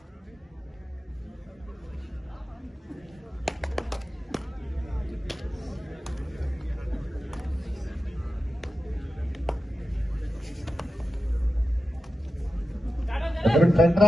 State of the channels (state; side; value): normal; both; correlation 0.92